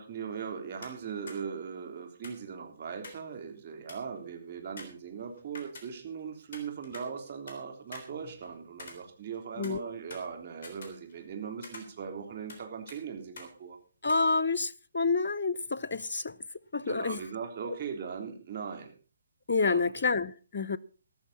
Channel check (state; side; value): inverted; both; correlation -0.63